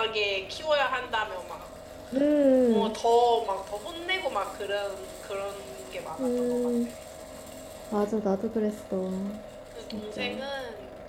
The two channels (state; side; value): identical; both; correlation 1.00